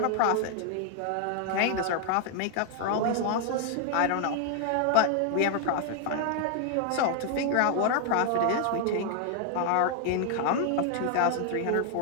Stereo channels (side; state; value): both; different; correlation 0.00